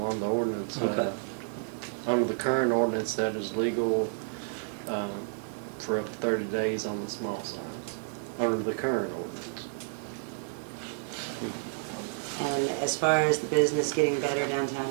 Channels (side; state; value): left; silent; digital silence